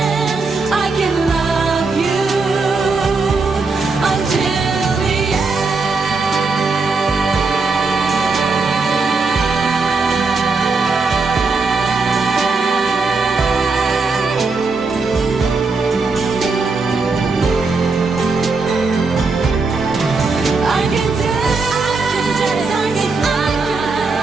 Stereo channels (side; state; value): left; quieter; 4.1 dB